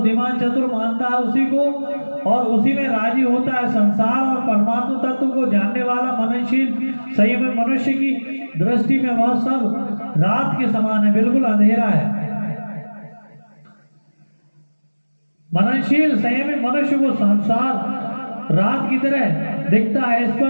चतुर मानता है, उसी को और उसी में राजी होता है। संसार और परमात्मा तत्व को जानने वाला मननशील संयमी मनुष्य की दृष्टि में वह सब रात के समान है, बिल्कुल अंधेरा है। मननशील संयमी मनुष्य को संसार रात की तरह दिखता है। इस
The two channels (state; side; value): inverted; both; correlation -1.00